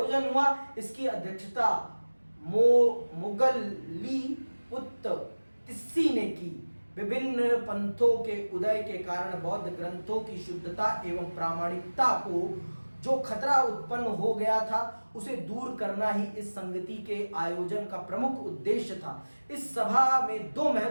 हुआ। इसकी अध्यक्षता मुगली पुत्र तिस्सी ने की। विभिन्न पंथों के उदय के कारण बौद्ध ग्रंथों की शुद्धता एवं प्रामाणिकता को जो खतरा उत्पन्न हो गया था, उसे दूर करना ही इस संगति के आयोजन का प्रमुख उद्देश्य था। इस सभा में 2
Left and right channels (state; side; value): inverted; both; correlation -1.00